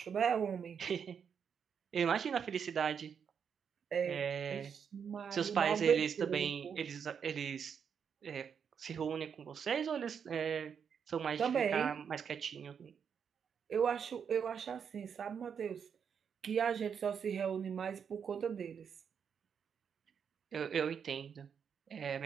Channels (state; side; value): quieter; left; 7.2 dB